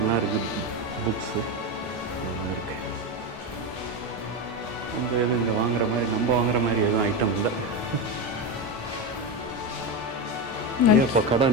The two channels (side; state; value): both; normal; correlation 0.15